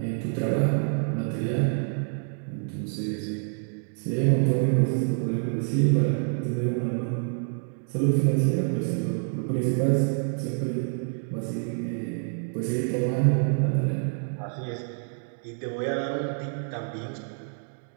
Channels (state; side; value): silent; left; 56 dB below the other